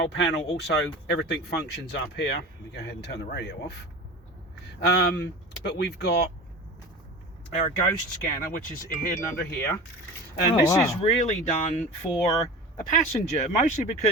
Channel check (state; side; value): normal; both; correlation 0.34